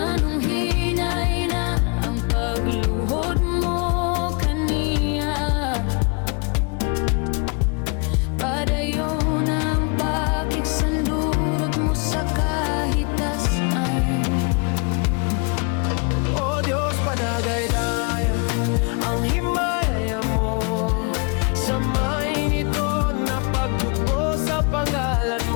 hinay na ang pagluhod mo kaniya? Padayon ang pakiksandurot mo sa kahitasan. O Diyos, padagay-daya ang himaya mo. Samayin ito na pagdugo sa pangalan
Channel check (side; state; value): right; quieter; 33.8 dB